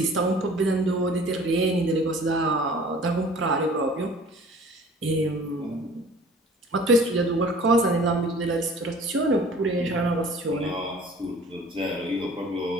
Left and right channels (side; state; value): both; normal; correlation 0.48